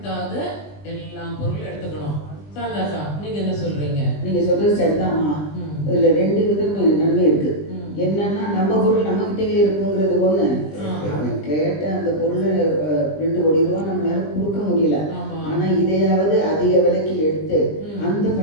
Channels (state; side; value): late; right; 20 ms